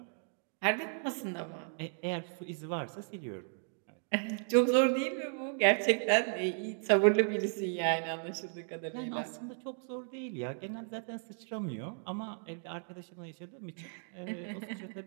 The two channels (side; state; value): left; silent; 55 dB below the other